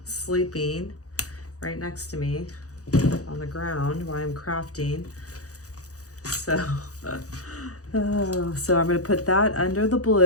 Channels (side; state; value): right; late; 0.66 ms